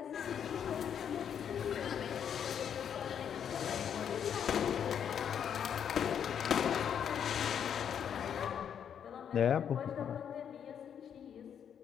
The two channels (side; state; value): right; quieter; 8.4 dB